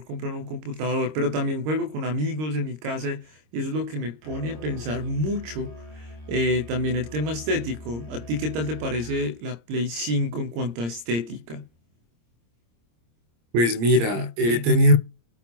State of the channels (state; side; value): late; left; 26 ms